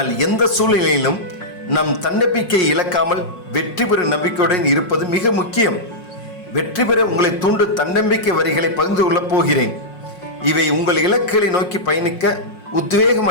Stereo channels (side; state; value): right; late; 5.5 ms